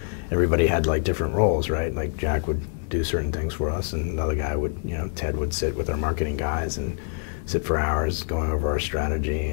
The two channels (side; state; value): right; silent; digital silence